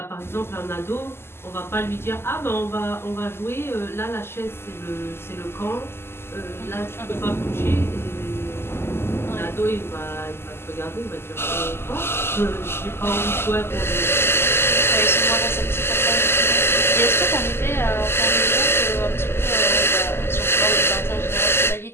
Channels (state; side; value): late; right; 0.12 ms